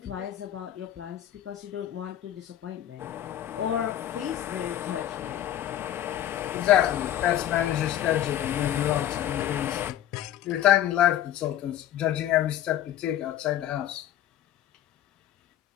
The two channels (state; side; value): quieter; right; 12.0 dB